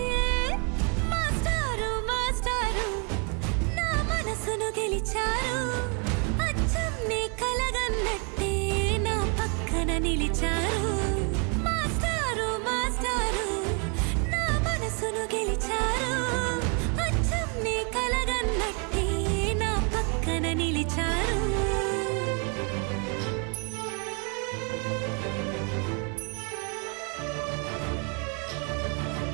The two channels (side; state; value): left; quieter; 36.8 dB